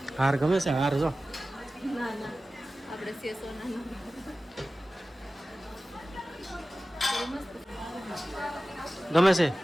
હાર ગમે છે હાર જો ના ના આપણે સેસો ના મસ્ત ગમે છે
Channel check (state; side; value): normal; both; correlation 0.96